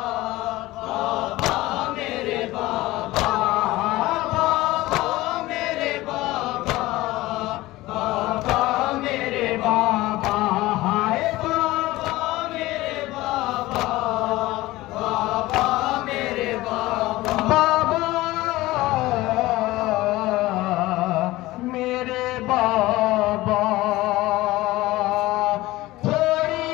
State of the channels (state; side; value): quieter; right; 18.3 dB